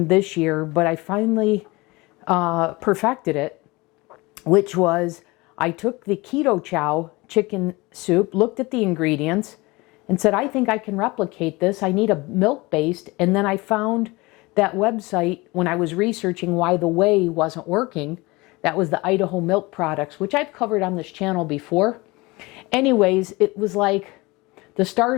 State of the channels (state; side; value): quieter; right; 23.2 dB